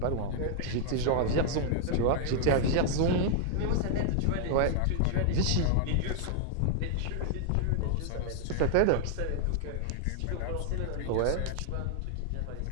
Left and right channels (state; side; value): different; both; correlation 0.00